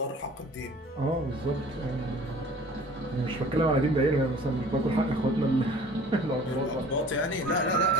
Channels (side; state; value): both; normal; correlation 0.48